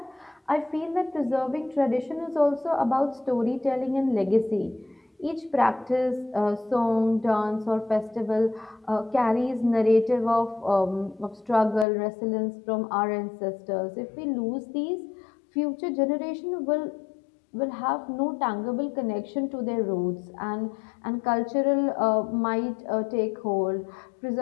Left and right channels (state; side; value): drops out; right; at 11.9 s